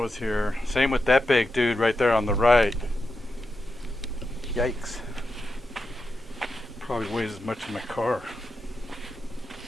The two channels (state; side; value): normal; both; correlation 0.88